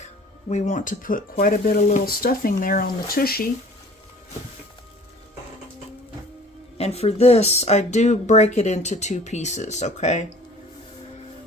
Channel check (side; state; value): both; normal; correlation 0.49